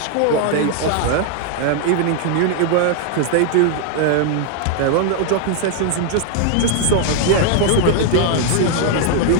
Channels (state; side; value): different; both; correlation 0.00